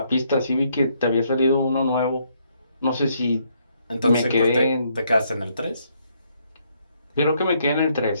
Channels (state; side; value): inverted; both; correlation -0.72